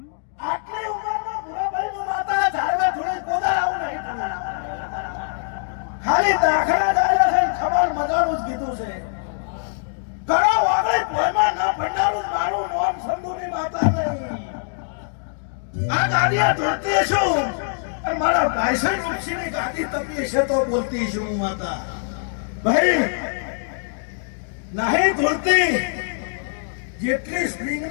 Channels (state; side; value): silent; right; digital silence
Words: આટલી ઉંમરમાં ભૂરાભાઈનું માતા ઝાડવા થોડી કોદાળ આવું નહીં થતું. ખાલી દાખલા ડાળ્યા છે ને ખબર મજાનું જ કીધું છે કરો વાગડે કોઈમાં ના ભંડારું જ મારું નોમ સંધુની માતા નહીં આ ગાડીયા ધોતી છું અને મારા ભાઈસન ઋષિની ગાડી તપી છે તો બોલતી છું હું માતા ભાઈ નહીં ધોતી જેટલી સ્પ્રિંગ